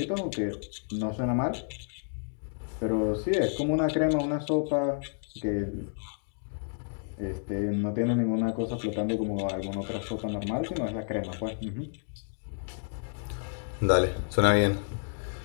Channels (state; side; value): silent; right; 58 dB below the other